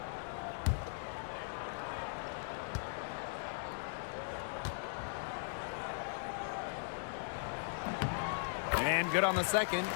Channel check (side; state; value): right; silent; 52 dB below the other